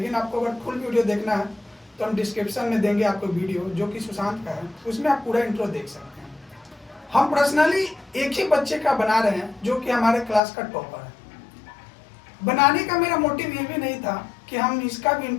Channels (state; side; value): drops out; right; at 10.4 s